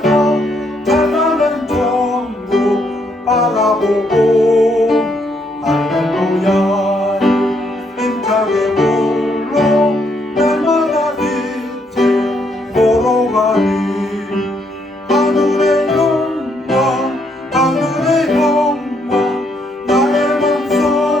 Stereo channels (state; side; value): normal; both; correlation 0.73